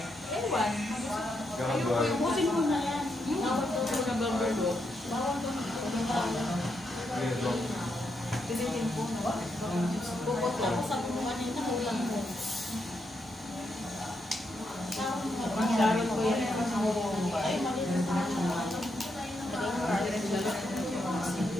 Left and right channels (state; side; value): normal; both; correlation 0.81